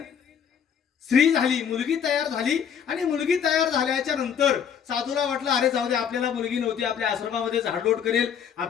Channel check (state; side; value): quieter; right; 7.8 dB